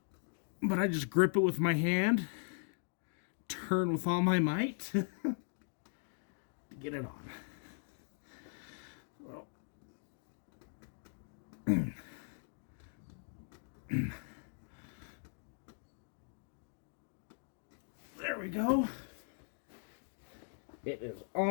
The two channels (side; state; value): right; silent; digital silence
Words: But I just grip it with my hand, turn with all my might to get it on. Well, there we go. It is